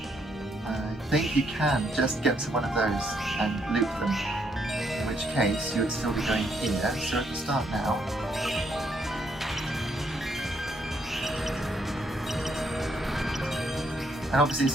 I think you can just get to one of those and loop them, in which case you would still be going here, so at the start now. And obviously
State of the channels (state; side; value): normal; both; correlation 0.73